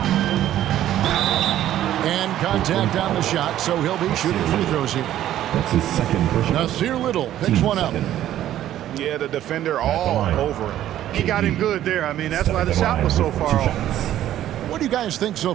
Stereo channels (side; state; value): left; quieter; 12.4 dB